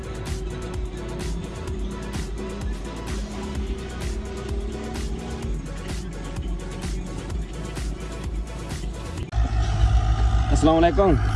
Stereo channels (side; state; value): both; identical; correlation 1.00